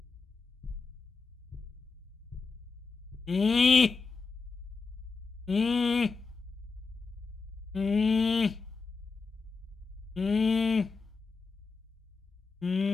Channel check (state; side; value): quieter; right; 4.6 dB